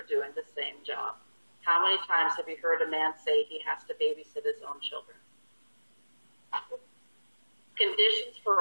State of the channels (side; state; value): both; inverted; correlation -1.00